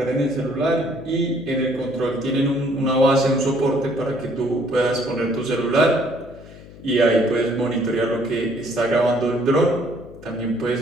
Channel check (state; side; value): noise; left; hum, 19 dB below the sound